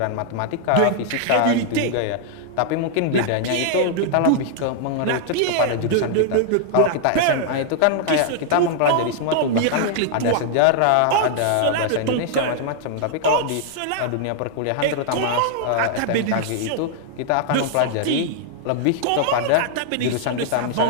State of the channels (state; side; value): different; both; correlation -0.01